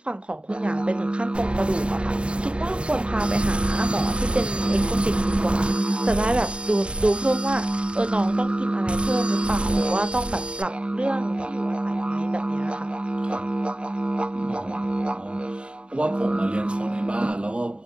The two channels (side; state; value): left; late; 0.055 ms